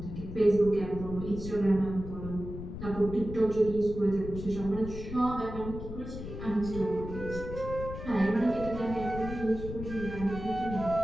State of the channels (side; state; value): left; noise; rumble, 9 dB below the sound